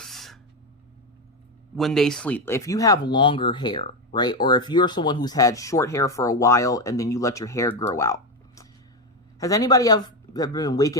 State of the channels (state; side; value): normal; both; correlation 0.11